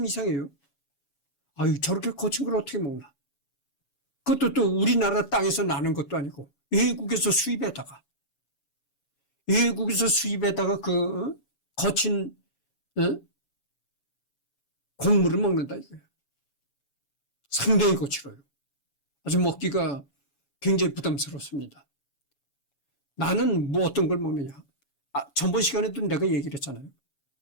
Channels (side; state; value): right; late; 7.1 ms